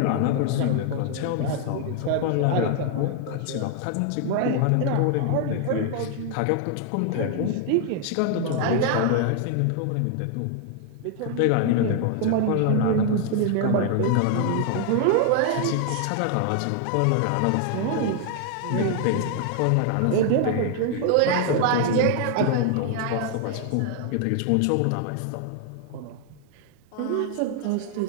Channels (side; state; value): both; different; correlation 0.00